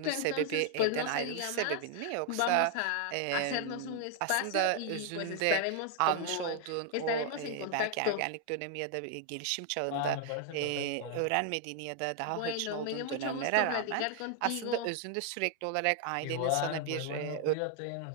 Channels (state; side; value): different; both; correlation 0.00